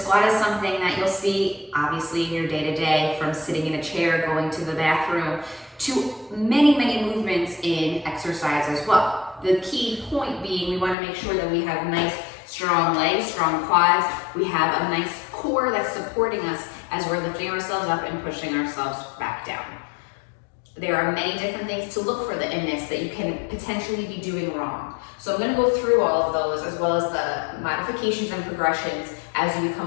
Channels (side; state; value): right; drops out; at 11.0 s